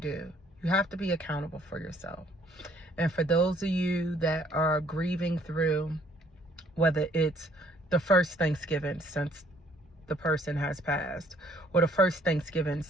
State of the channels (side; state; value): both; normal; correlation 0.63